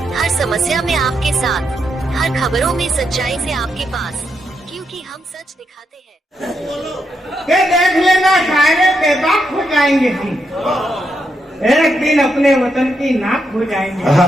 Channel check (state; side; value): normal; both; correlation 0.81